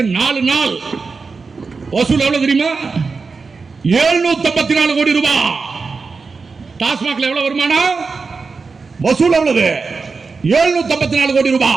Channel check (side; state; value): left; quieter; 4.6 dB